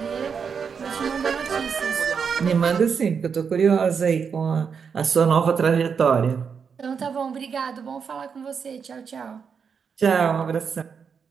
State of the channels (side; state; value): left; quieter; 6.3 dB